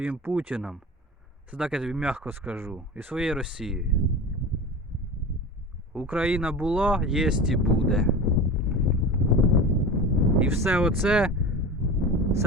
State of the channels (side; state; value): both; normal; correlation 0.31